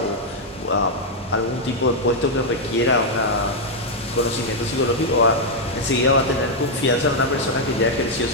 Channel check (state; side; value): normal; both; correlation -0.02